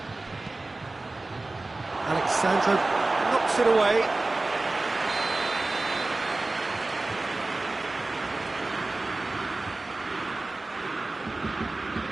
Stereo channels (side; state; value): left; quieter; 3.1 dB